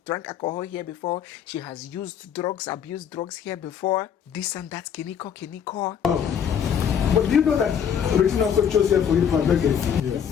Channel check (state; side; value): quieter; right; 8.2 dB